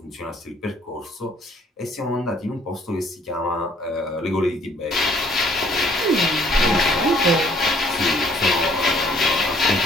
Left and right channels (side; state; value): both; normal; correlation 0.60